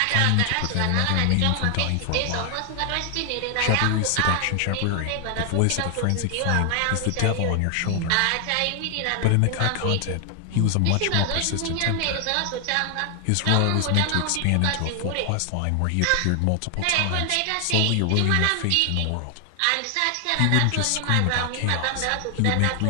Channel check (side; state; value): both; different; correlation 0.00